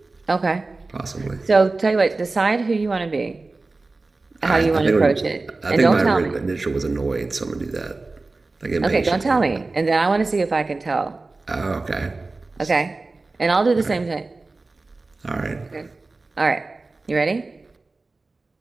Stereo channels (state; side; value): quieter; left; 3.5 dB